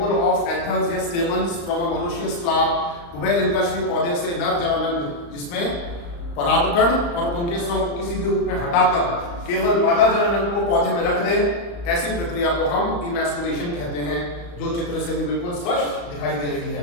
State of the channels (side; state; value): right; late; 35 ms